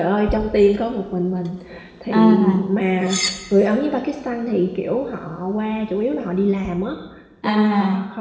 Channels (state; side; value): identical; both; correlation 1.00